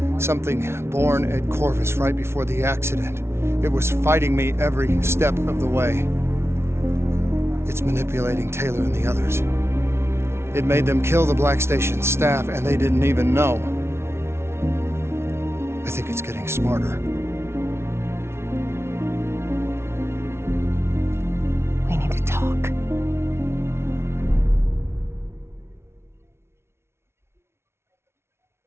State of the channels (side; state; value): left; late; 0.12 ms